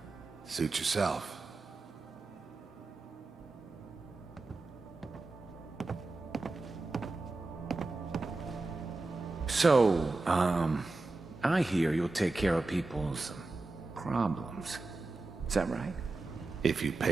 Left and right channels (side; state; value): left; quieter; 3.4 dB